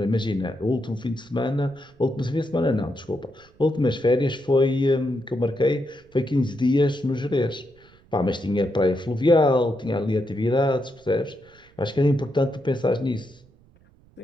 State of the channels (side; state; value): right; noise; rumble, 29 dB below the sound